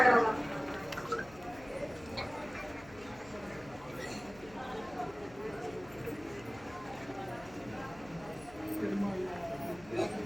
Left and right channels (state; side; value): noise; left; hum, 20 dB below the sound